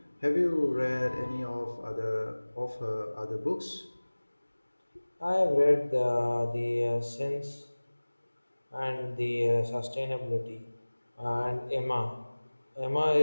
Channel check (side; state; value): both; inverted; correlation -1.00